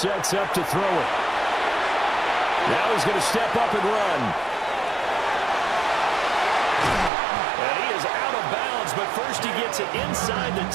up to throw it. Now he's going to step up and run. And he is out of bounds, but first he gets it inside the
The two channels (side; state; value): left; drops out; at 7.1 s